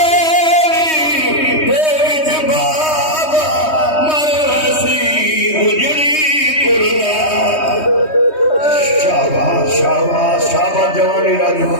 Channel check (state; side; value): late; right; 3.2 ms